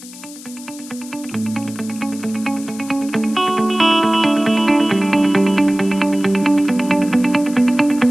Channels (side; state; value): left; noise; hiss, 17 dB below the sound